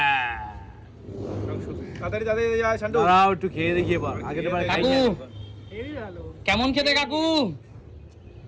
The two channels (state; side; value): identical; both; correlation 1.00